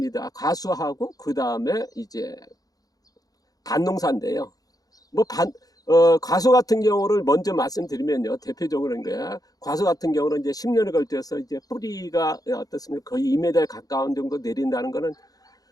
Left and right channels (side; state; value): right; late; 0.18 ms